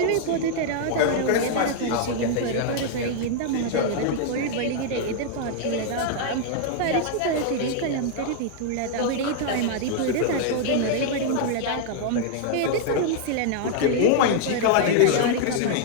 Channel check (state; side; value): different; both; correlation -0.01